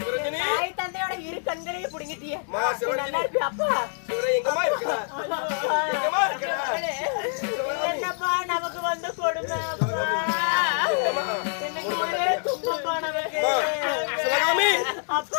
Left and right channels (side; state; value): right; silent; digital silence